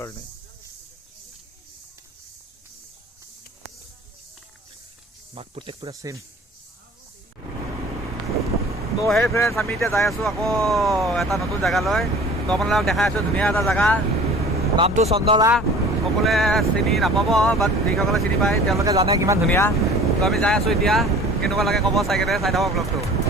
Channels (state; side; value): normal; both; correlation 0.46